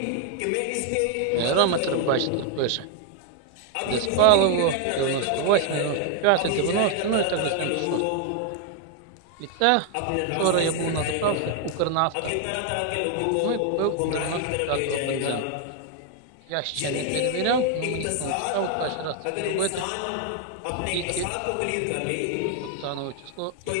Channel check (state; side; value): different; both; correlation 0.00